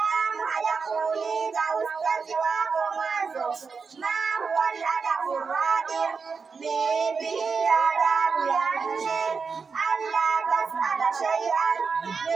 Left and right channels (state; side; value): quieter; left; 5.2 dB